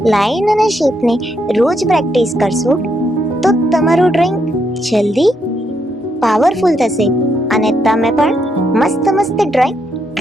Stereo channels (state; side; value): normal; both; correlation 0.78